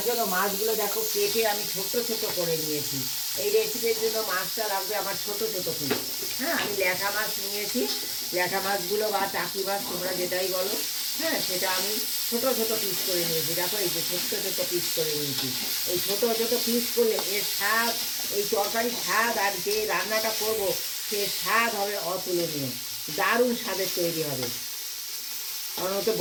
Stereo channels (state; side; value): identical; both; correlation 1.00